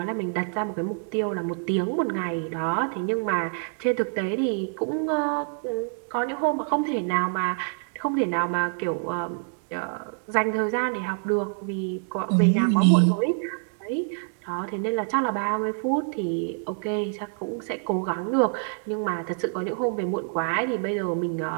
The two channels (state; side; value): silent; left; 61 dB below the other